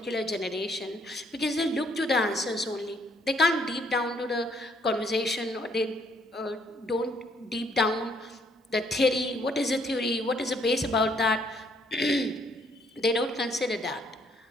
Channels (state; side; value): normal; both; correlation 0.67